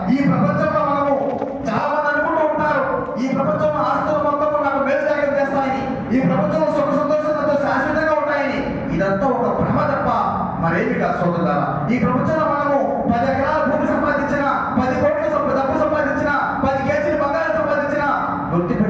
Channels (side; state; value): both; identical; correlation 1.00